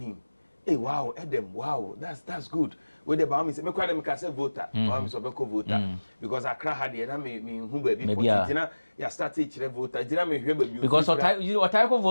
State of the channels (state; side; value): inverted; both; correlation -1.00